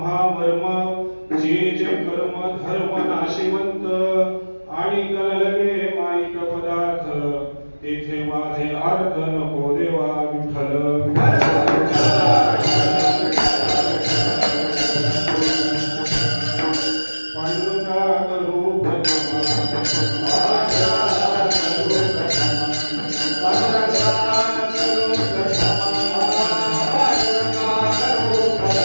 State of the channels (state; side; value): inverted; both; correlation -1.00